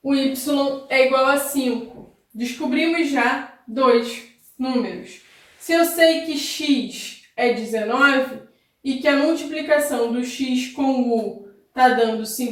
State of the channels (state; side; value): identical; both; correlation 1.00